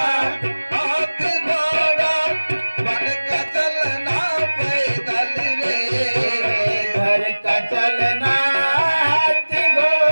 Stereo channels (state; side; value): inverted; both; correlation -1.00